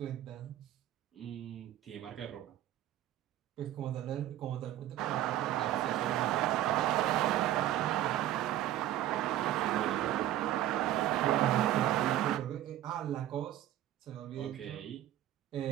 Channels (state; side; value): quieter; left; 13.0 dB